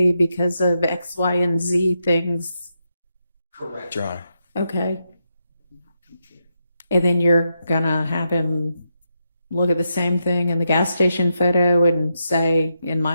because of X, Y, and Z things? Correct, Your Honor. Okay. And then you're going to have him look at the same thing in the gas station photo and say, in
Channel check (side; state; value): both; inverted; correlation -0.84